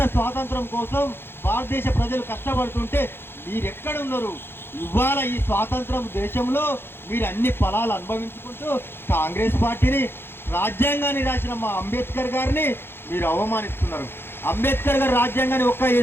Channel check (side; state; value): right; late; 0.11 ms